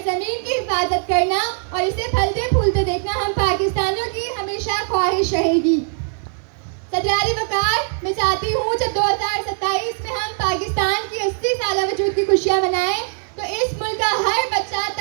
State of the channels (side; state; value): left; silent; digital silence